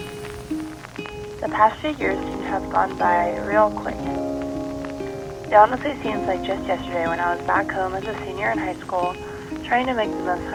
the past few years seem to have gone by real quick. It honestly seems like just yesterday when I was back home as a senior in high school, trying to make the most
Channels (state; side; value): identical; both; correlation 1.00